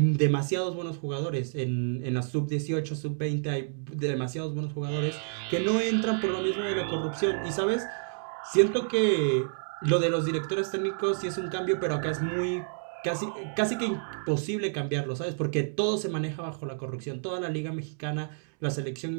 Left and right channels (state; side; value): silent; left; digital silence